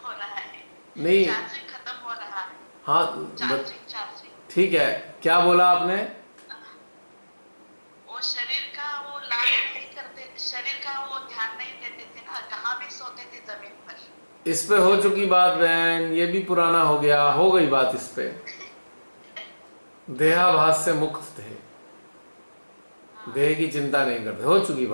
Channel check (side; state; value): both; inverted; correlation -1.00